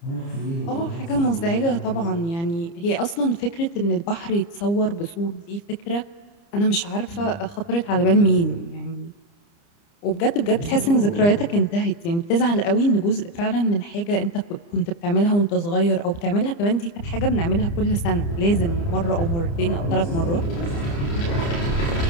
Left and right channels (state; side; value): late; right; 30 ms